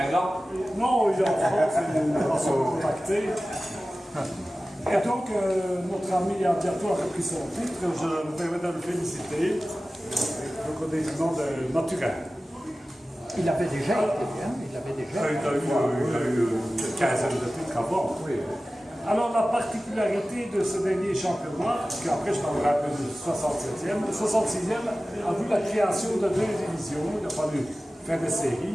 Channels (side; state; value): both; normal; correlation 0.96